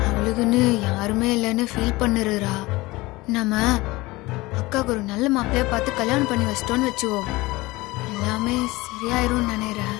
அவளுக்குன்னு யாருமே இல்லைன்னு ஃபீல் பண்ணுறா. நம்ம அக்காவுக்கு ஒரு நல்ல மாப்பிள்ளையா பார்த்து கல்யாணம் பண்ணி வச்சிட்டோன்னு வச்சுக்கோ, எல்லாமே சரியாயிரும் நினைக்கிறேன்.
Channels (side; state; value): right; quieter; 21.0 dB